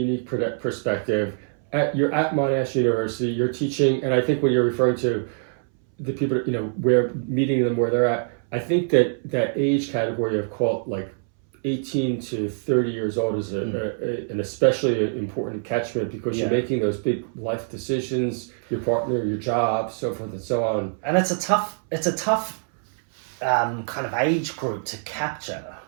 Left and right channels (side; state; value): left; silent; 62 dB below the other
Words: perspective. You're at Monash University, you're teaching, and I think when you're referring to the people, where meeting them where they're at, I think that age category of 18 to 30 years old is an especially important catchment, because you're making those big life decisions, your partner, your job, so forth and so on. And it's a tough kind of age group to capture,